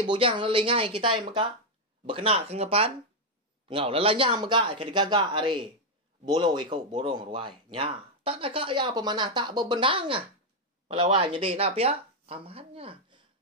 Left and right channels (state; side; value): normal; both; correlation 0.01